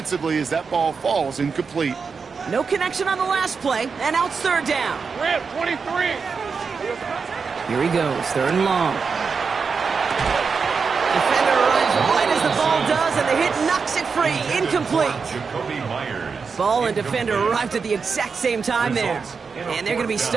as that ball falls incomplete. No connection on the last play, and now it's third down. Rip, 23. Here he goes, third and long. Defender arrives right as the ball does, and the hit knocks it free. Incomplete. Ball and defender arrived at the exact same time there. And they're going to be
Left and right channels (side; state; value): left; quieter; 5.3 dB